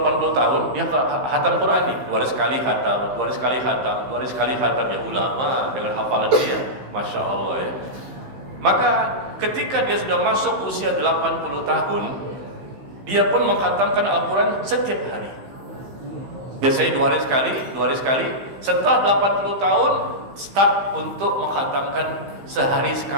tahun dia khatam Quran nih, 2 hari sekali khatam, 2 hari sekali khatam, 2 hari sekali khatam. Ya ulama dengan hafalan dia, Masya Allah ya. Maka ketika dia sudah masuk usia 80 tahun, dia pun mengkhatamkan Al-Quran setiap hari. Biasanya 2 hari sekali, 2 hari sekali. Setelah 80 tahun, start untuk mengkhatamkan sehari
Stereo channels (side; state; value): left; late; 15 ms